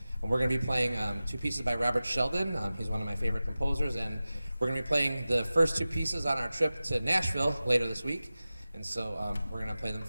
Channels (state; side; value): inverted; both; correlation -0.96